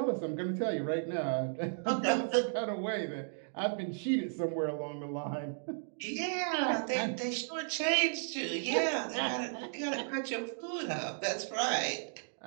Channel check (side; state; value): left; silent; digital silence